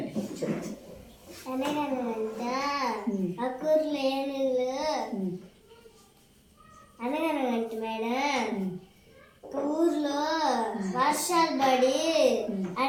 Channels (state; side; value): identical; both; correlation 1.00